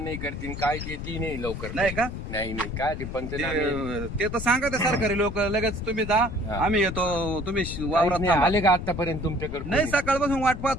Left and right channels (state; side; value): noise; left; rumble, 7 dB below the sound